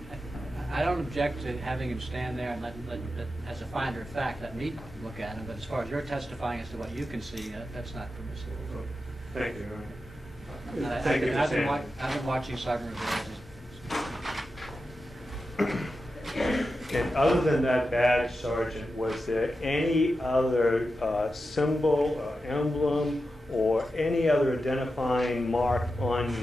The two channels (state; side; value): normal; both; correlation 0.90